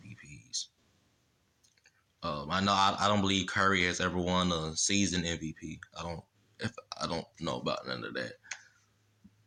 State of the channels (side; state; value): both; identical; correlation 1.00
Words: I don't believe Curry has ever won a season MVP. I don't know about none of that.